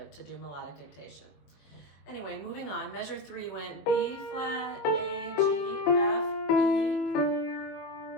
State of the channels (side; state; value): right; late; 21 ms